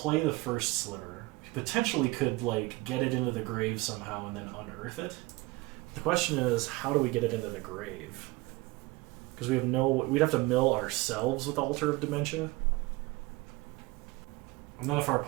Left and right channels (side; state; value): left; quieter; 21.7 dB